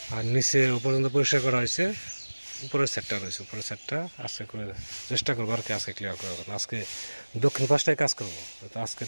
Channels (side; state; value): both; inverted; correlation -1.00